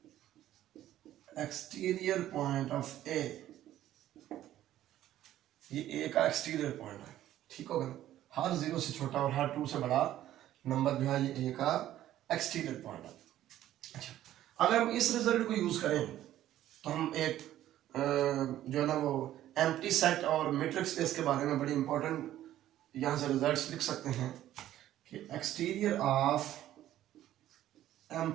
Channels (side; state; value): left; quieter; 13.0 dB